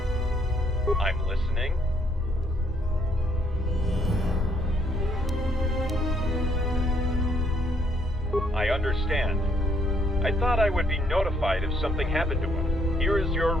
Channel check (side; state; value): both; normal; correlation 0.70